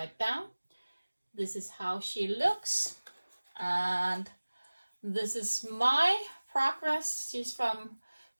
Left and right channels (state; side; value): inverted; both; correlation -1.00